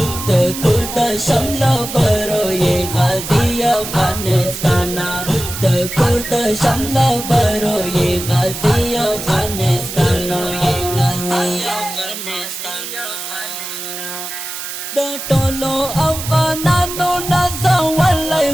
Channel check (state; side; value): noise; right; hiss, 8 dB below the sound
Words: د کور د شمل برو یې غازی افغانستان د کور د شمل برو یې غازی افغانستان د ټولو افغانانو نازولای